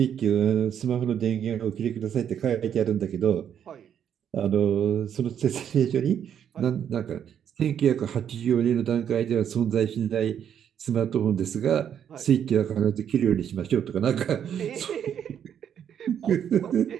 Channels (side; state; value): left; quieter; 8.9 dB